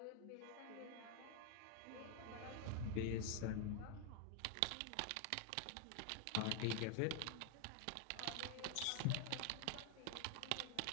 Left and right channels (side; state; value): both; different; correlation 0.00